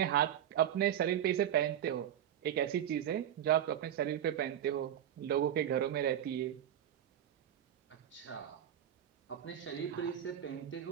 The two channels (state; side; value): quieter; left; 10.5 dB